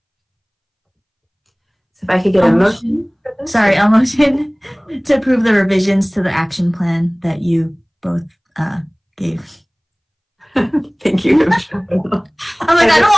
So if I could get a motion. Sorry, a motion to approve the revisions to the action plan that you both gave. Thank you. I'm like, I don't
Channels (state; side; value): identical; both; correlation 1.00